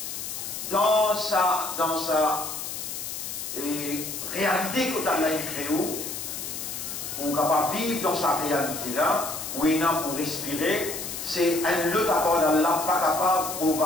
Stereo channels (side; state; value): left; noise; hiss, 6 dB below the sound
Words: dans sa réalité que Allah a créée, pour capable vivre dans sa réalité là, où il a pour respirer, c'est un autre apport d'Allah pas capable de